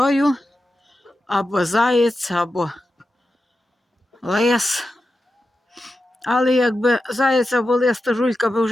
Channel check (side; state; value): both; normal; correlation 0.91